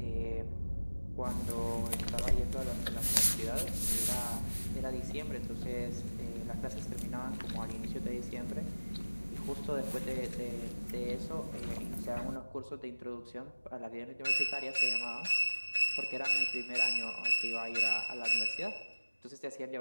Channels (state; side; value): inverted; both; correlation -1.00